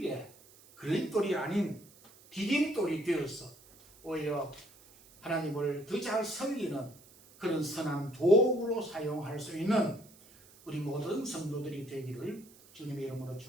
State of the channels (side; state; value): right; noise; hiss, 24 dB below the sound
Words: 걸림돌이 아닌 디딤돌이 되어서 오히려 하나님을 더 잘 섬기는 그런 선한 도구로 사용할 수 있는 우리 모든 성도들이 되기를 주님의 이름으로